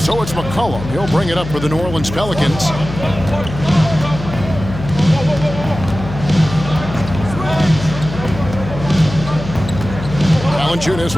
so it's McCollum. He'll bring it up for the New Orleans Pelicans. Valanciunas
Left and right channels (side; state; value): left; noise; hum, 9 dB below the sound